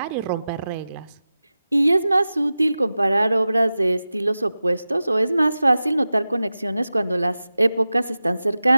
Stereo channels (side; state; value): both; inverted; correlation -0.94